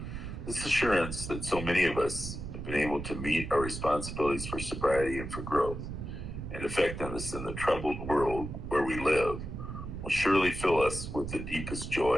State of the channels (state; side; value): noise; right; rumble, 7 dB below the sound